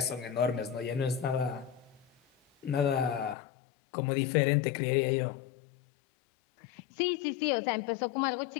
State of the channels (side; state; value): right; drops out; at 3.4 s